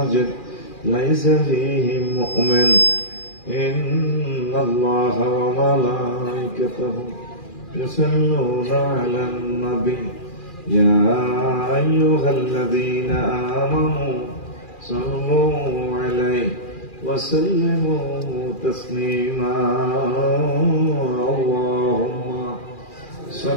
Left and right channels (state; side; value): late; right; 2.4 ms